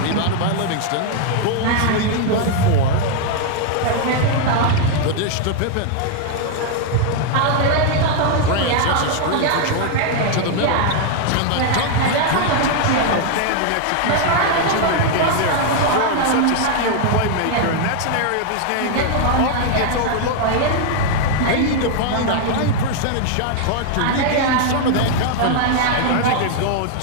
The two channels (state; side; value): different; both; correlation 0.00